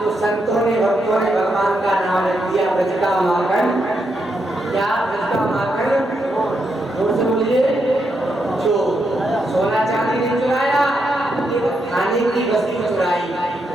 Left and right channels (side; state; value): both; normal; correlation 0.81